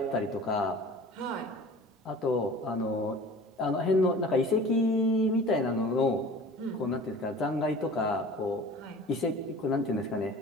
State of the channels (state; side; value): normal; both; correlation 0.42